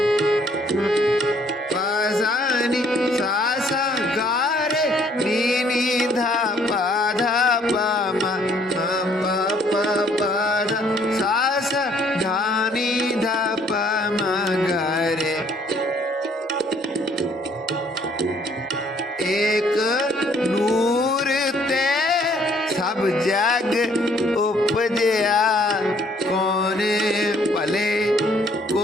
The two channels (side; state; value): both; normal; correlation 0.63